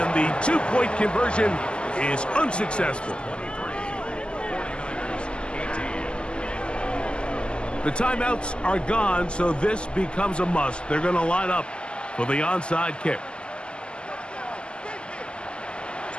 the 2-point conversion is unsuccessful. 49ers 18. The timeouts are gone, so this becomes a must. They're going to line up for the onside kick.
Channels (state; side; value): late; right; 0.050 ms